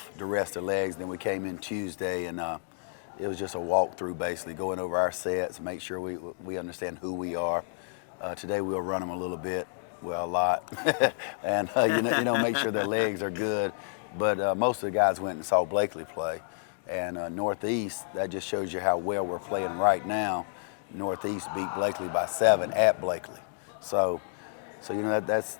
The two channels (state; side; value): silent; right; digital silence